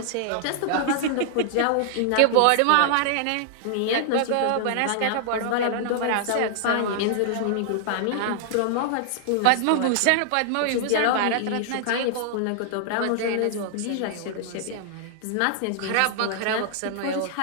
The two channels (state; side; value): different; both; correlation -0.01